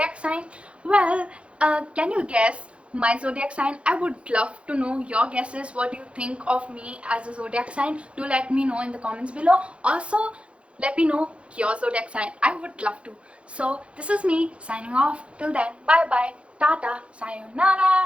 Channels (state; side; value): late; left; 0.060 ms